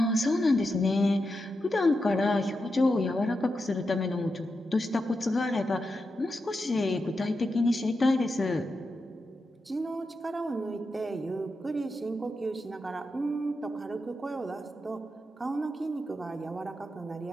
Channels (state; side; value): normal; both; correlation 0.88